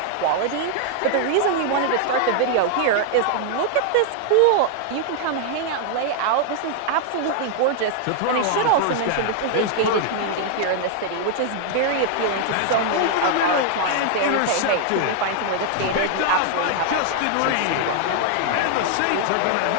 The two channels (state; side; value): different; both; correlation 0.00